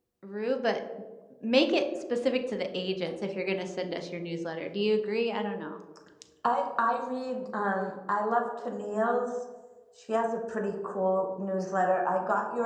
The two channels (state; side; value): identical; both; correlation 1.00